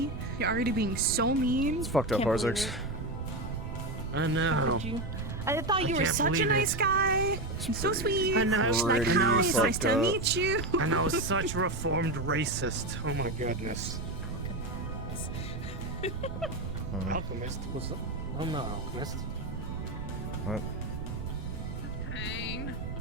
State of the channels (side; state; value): right; noise; rumble, 7 dB below the sound